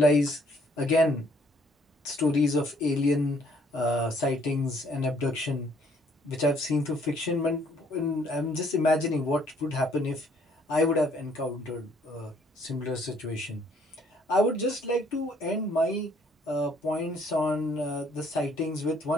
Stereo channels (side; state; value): both; normal; correlation 0.64